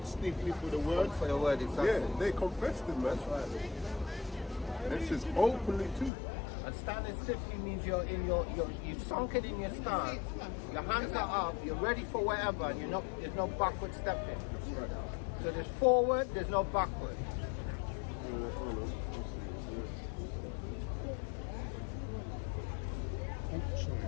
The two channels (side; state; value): right; drops out; at 6.1 s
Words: stiffly for the word. For the word, exactly. Yeah, they confessed him, man. That's right. And it says openly too. And standing stiffly means you're sunk it in your stance. Your hands are up. You're ready for whatever, and there's no backward stepping. That's right. So there's forward. There's no backward.